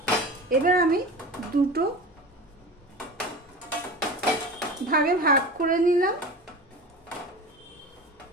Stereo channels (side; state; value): both; normal; correlation 0.32